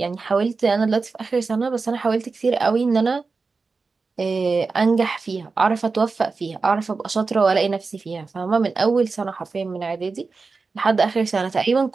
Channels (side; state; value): left; quieter; 4.3 dB